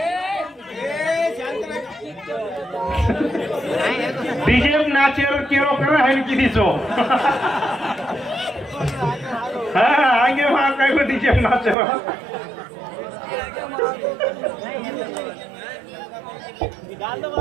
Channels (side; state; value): left; drops out; at 11.8 s